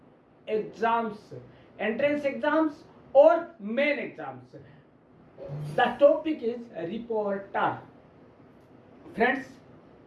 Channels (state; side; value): identical; both; correlation 1.00